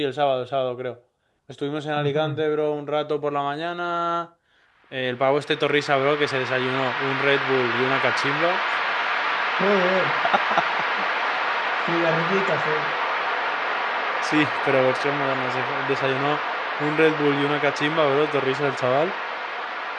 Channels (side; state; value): both; identical; correlation 1.00